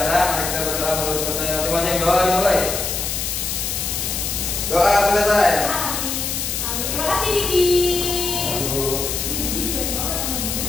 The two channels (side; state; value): left; noise; hiss, 2 dB below the sound